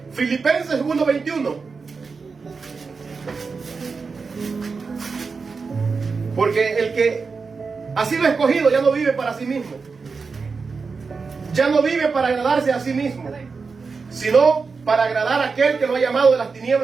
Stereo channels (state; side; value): quieter; left; 4.8 dB